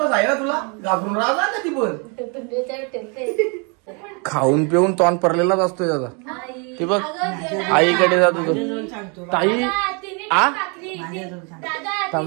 आहे ना तुला. घाबरून राहा का ती पण. खाऊन पिऊन तोंड पडलेलाच असतोय त्याचा. ते बघ आईकडे जातो तो. ताई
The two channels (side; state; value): left; quieter; 34.4 dB